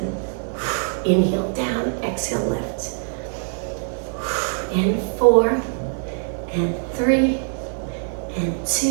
inhale down, exhale lift. And 4, and 3, and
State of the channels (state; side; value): silent; left; digital silence